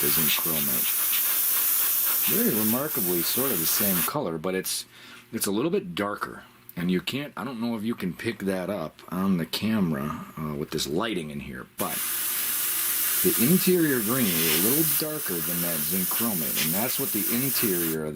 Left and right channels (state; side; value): identical; both; correlation 1.00